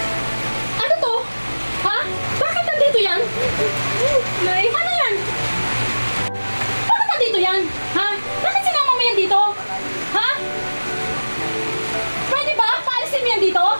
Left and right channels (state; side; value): inverted; both; correlation -1.00